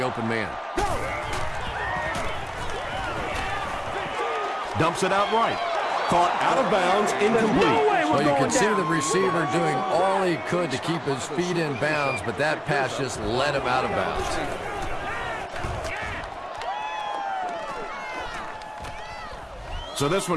man. Dumps it out right. Caught out of bounds, incomplete. Well, you can see the receiver doing all he could to keep his feet in bounds, but that pass just let him out of bounds. So this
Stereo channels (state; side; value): identical; both; correlation 1.00